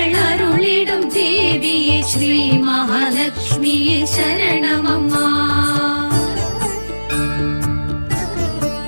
அருளிடும் தேவியே ஸ்ரீ மகாலட்சுமியே சரணமம்மா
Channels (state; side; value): inverted; both; correlation -1.00